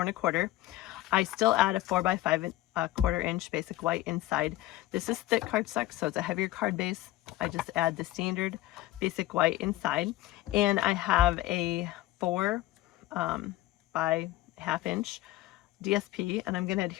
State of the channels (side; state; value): right; quieter; 16.0 dB